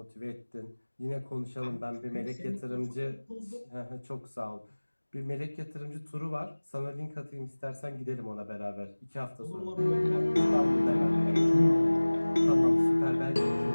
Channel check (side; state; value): both; inverted; correlation -1.00